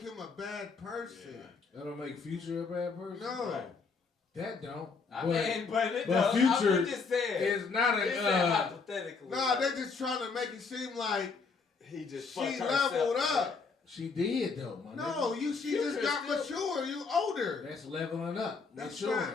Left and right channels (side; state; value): right; quieter; 4.8 dB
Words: a bad person. Yeah. That don't make Future a bad person? No. Right. That don't. But Future is not a... hypothetically. Nah, they just trying to make it seem like he just she leveled up. She did though, my nigga. She just got mature. You older. That's leveling up. That's